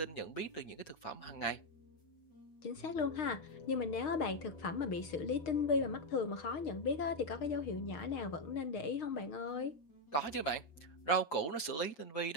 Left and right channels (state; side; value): late; right; 6.5 ms